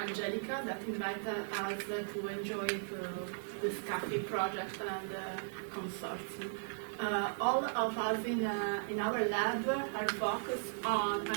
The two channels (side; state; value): left; silent; digital silence